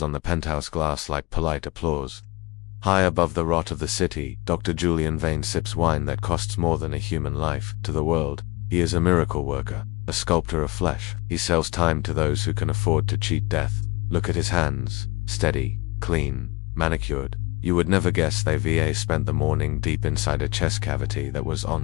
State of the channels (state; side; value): quieter; right; 23.5 dB